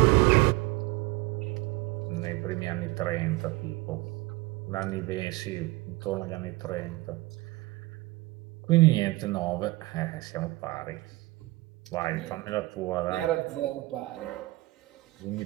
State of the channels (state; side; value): quieter; left; 21.1 dB